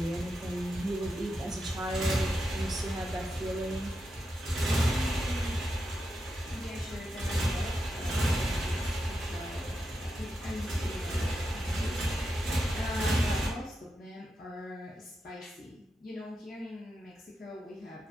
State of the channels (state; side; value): normal; both; correlation 0.87